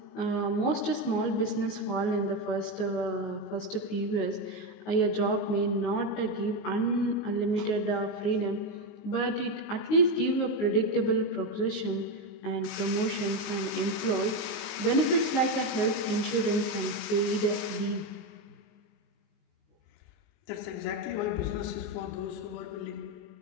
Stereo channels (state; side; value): late; right; 19 ms